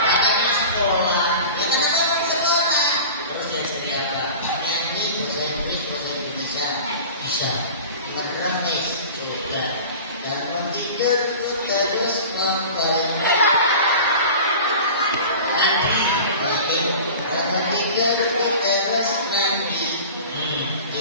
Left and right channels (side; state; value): both; inverted; correlation -0.37